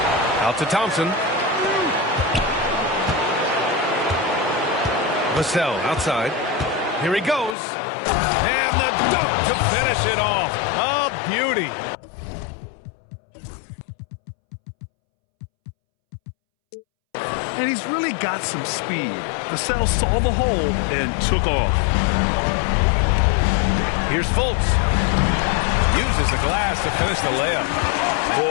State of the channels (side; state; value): right; drops out; at 7.6 s